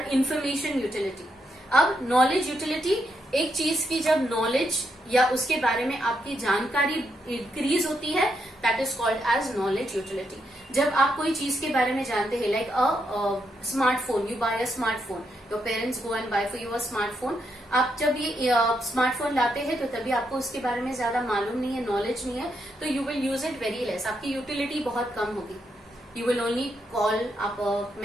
information utility. अब knowledge utility, एक चीज की जब knowledge या उसके बारे में आपकी जानकारी इंक्रीज होती है, that is called as knowledge utility. जब आप कोई चीज के बारे में जानते हैं, like a smartphone, you buy a smartphone, your parents go and buy for you a smartphone. आप जब ये स्मार्टफोन लाते हैं तो तभी आपको उसके बारे में ज्यादा मालूम नहीं है, नॉलेज नहीं है, तो you will use it very less. आपकी यूटिलिटी बहुत कम होगी. यू विल ओनली कॉल, आप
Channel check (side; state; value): both; normal; correlation 0.80